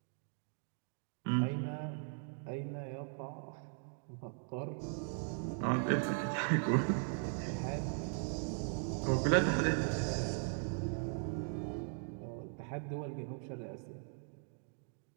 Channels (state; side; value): silent; left; 52 dB below the other